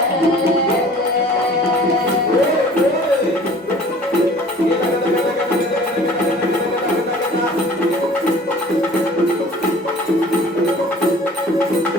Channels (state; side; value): normal; both; correlation 0.48